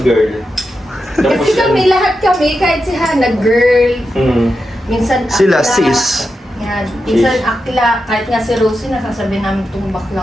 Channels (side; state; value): both; normal; correlation 0.88